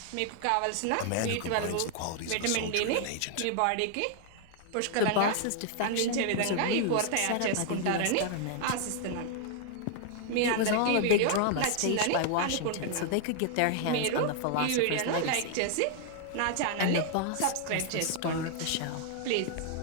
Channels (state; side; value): different; both; correlation 0.00